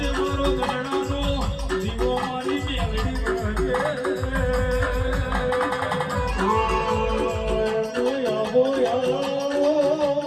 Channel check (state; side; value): identical; both; correlation 1.00